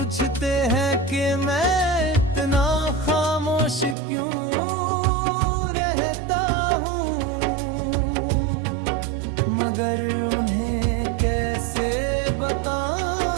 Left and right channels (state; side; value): drops out; left; at 4.0 s